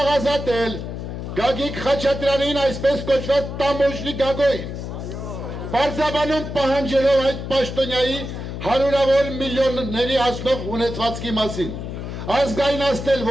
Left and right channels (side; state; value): left; noise; hum, 7 dB below the sound